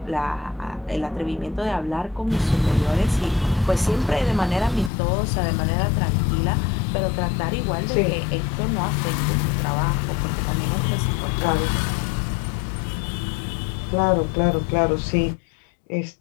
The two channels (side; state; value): right; drops out; at 4.9 s